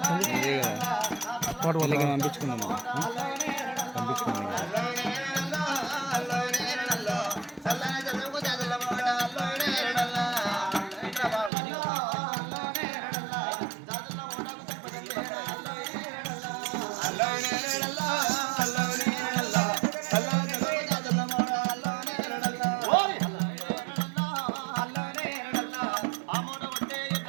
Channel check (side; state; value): left; drops out; at 11.5 s